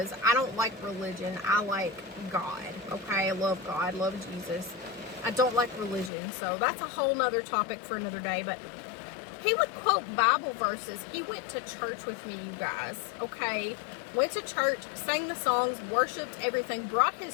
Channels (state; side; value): drops out; right; at 6.1 s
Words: I don't like religion. I like God, okay? I love God, love Jesus. I don't like religion, so that's a whole nother topic for another day. But he would quote Bible verses. He went to church with me, you guys, okay? Went to church, sang the songs, worshiped everything, brought